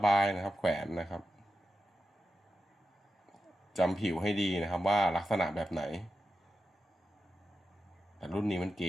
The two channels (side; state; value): both; normal; correlation 0.90